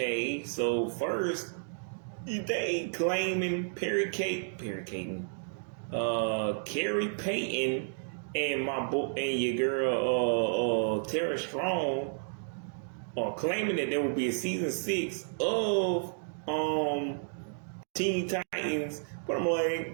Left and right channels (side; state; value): left; silent; digital silence